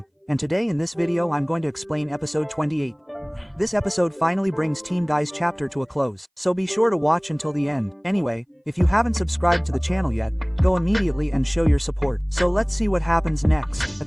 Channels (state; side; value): identical; both; correlation 1.00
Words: and today in this video I'm going to explain episode 28. This episode finally brings Team Guy's chapter to a close, so be sure to watch until the end. Anyway, if you haven't subscribed to the channel yet, go immediately and show your support. So let's see what happens next.